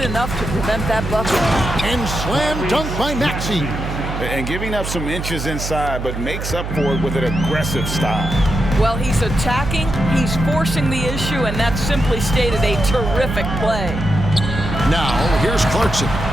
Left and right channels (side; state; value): right; noise; hum, 6 dB below the sound